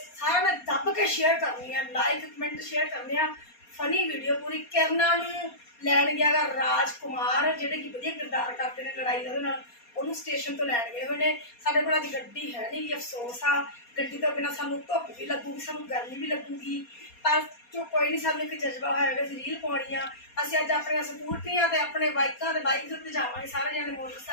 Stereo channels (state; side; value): late; right; 4.2 ms